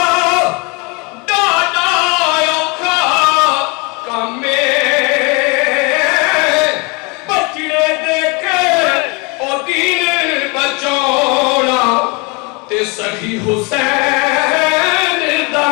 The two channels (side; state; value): right; quieter; 28.4 dB